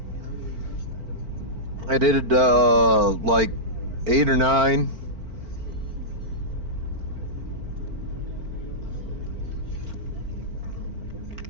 I did like 8 or 9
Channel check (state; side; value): late; left; 4.4 ms